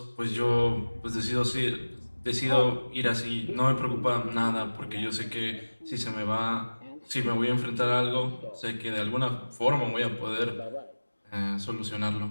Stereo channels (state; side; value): inverted; both; correlation -1.00